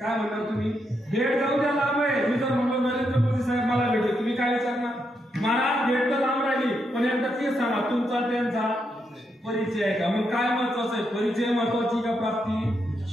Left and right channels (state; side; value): normal; both; correlation 0.81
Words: काय म्हणणार तुम्ही? भेट जाऊ द्या लांब आहे. मी जर म्हणलो नरेंद्र मोदी साहेब मला भेटले, तुम्ही काय विचारणार? महाराज भेट तर लांब राहिली, पण एकदा ते सांगा तुमचा त्यांचा परिचय आहे का? मग काय महत्वाचं आहे? परिचय महत्वाची का प्राप्ती?